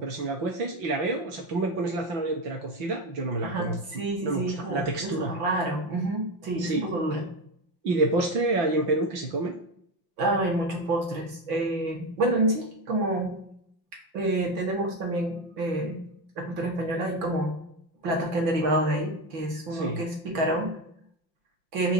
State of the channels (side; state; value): left; late; 5.9 ms